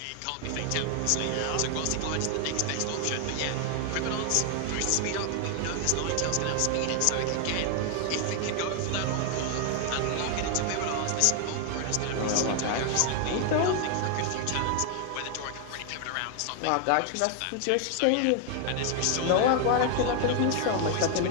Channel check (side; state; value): both; different; correlation 0.00